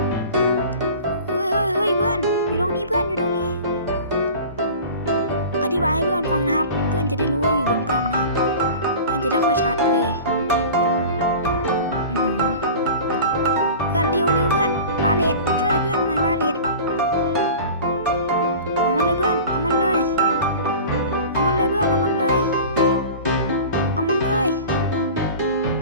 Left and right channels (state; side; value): inverted; both; correlation -0.38